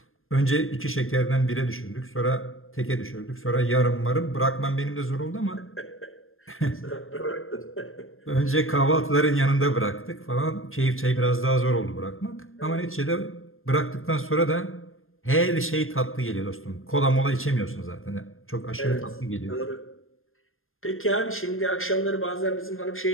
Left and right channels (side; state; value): right; late; 0.60 ms